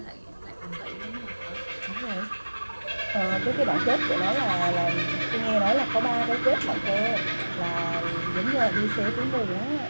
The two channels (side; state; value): both; inverted; correlation -1.00